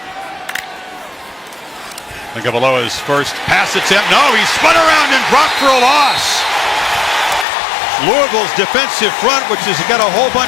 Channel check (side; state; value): right; drops out; at 7.5 s